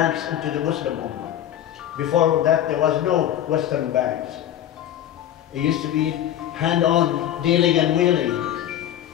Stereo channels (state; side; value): quieter; right; 11.4 dB